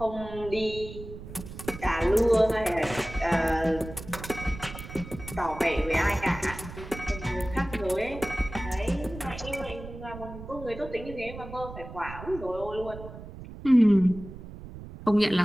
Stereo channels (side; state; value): right; noise; rumble, 13 dB below the sound